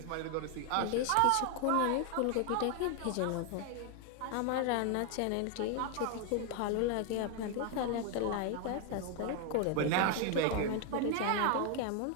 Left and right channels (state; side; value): different; both; correlation 0.01